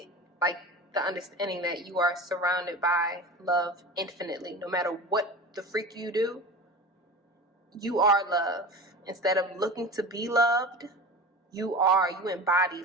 like the understanding that you are surrounded by love infinitely. No matter what the freak you do, you are love. Instead of looking to be loved, you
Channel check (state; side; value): normal; both; correlation 0.32